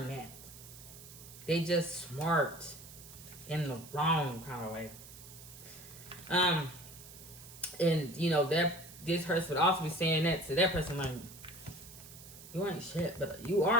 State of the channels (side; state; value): right; noise; hiss, 17 dB below the sound